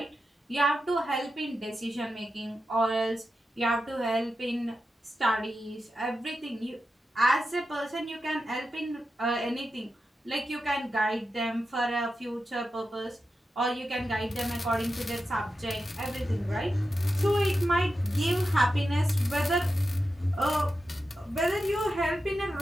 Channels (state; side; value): normal; both; correlation 0.90